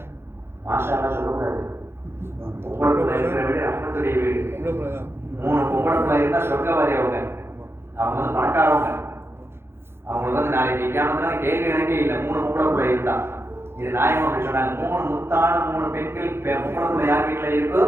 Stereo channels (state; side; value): late; left; 0.12 ms